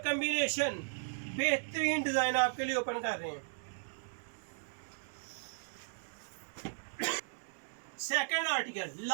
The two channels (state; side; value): silent; left; digital silence